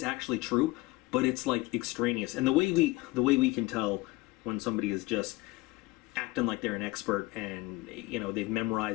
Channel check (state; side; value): quieter; right; 20.9 dB